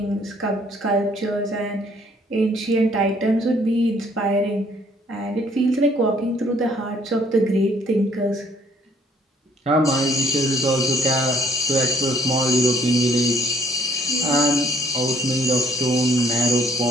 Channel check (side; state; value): both; normal; correlation 0.63